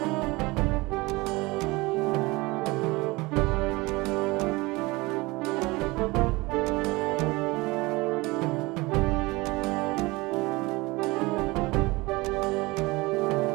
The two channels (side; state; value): left; quieter; 22.8 dB